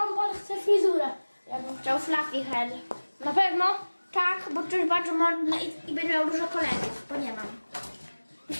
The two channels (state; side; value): inverted; both; correlation -1.00